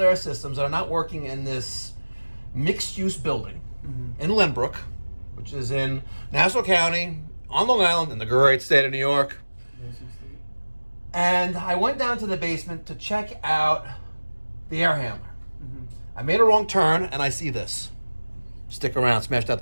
air systems that are not working in this mixed-use building in Lynbrook, which is in Nassau County, on Long Island, in the great state of New York. And I went down to the basement to check out the air handler. I made a wrong turn, and I see this. Stick around, smash that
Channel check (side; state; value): both; inverted; correlation -1.00